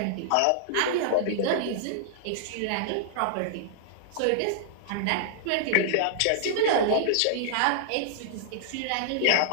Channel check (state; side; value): different; both; correlation -0.01